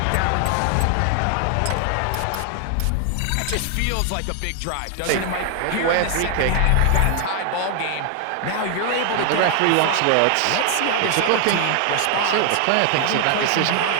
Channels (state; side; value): different; both; correlation 0.00